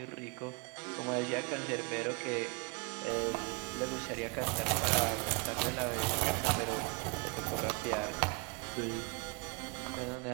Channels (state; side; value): quieter; left; 28.7 dB